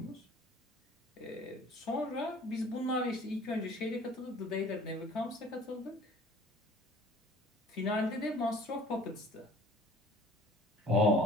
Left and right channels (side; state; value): both; normal; correlation 0.49